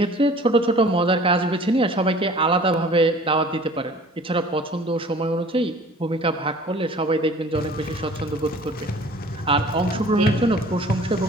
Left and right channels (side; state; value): both; normal; correlation 0.48